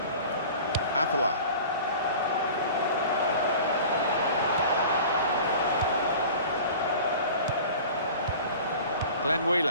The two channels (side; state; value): both; inverted; correlation -0.40